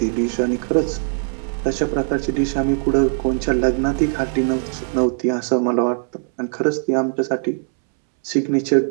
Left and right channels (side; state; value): left; silent; 64 dB below the other